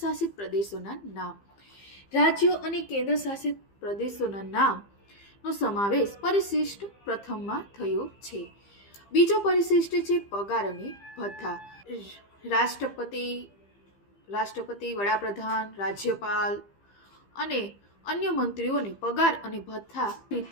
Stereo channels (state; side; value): late; right; 15 ms